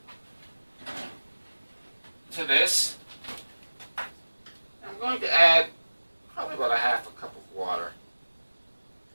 to this. I'm going to add probably about a half a cup of water.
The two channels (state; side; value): inverted; both; correlation -1.00